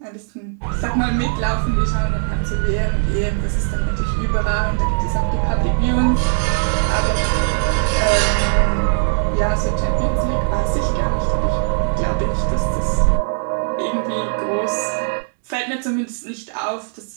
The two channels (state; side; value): silent; left; 65 dB below the other